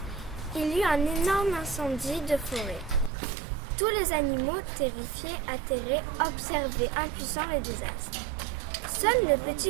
il y eut un énorme incendie de forêt. Tous les animaux, terrifiés, atterrés, observaient impuissants les désastres. Seul le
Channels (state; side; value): drops out; left; at 3.1 s